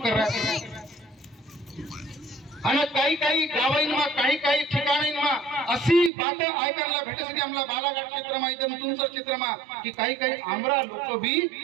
कर रहा है आणि काही काही गावांना काही काही ठिकाणींना अशी बात ऐकायला भेटते आम्हाला बालाघाट क्षेत्रमा इथं तुमचं क्षेत्रमा की काही काही आमरा लोक भी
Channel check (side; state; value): left; drops out; at 6.1 s